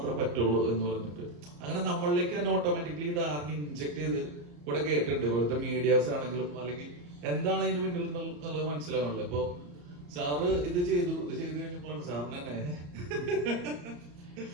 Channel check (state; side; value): late; left; 34 ms